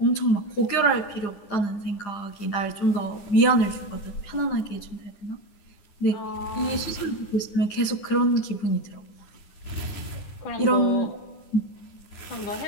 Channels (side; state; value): right; late; 9.9 ms